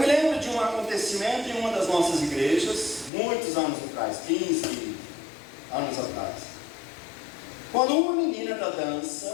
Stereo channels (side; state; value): right; drops out; at 3.1 s